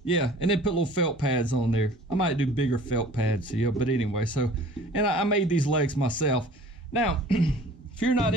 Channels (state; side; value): normal; both; correlation 0.48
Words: yeah, and then put little felt pads on there. I might do bigger felt pads, yeah. But anyway, so and I made these legs myself. Now, if you're not